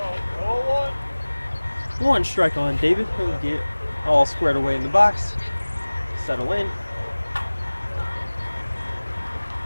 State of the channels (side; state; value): both; inverted; correlation -1.00